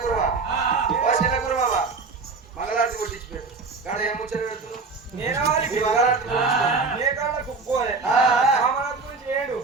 మంగళారతి కొట్టించి పెట్టు కాడ ఏం ముచ్చట పెడుతున్నావు నేను కామరాజు గురించి ఏడు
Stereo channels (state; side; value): quieter; left; 4.3 dB